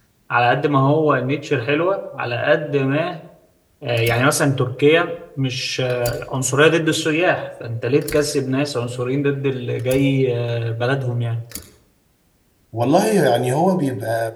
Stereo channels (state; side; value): identical; both; correlation 1.00